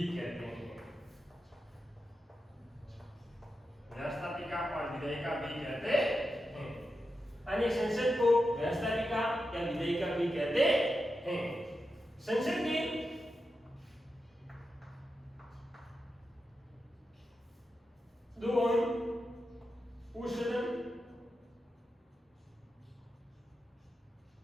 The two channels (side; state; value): both; normal; correlation 0.89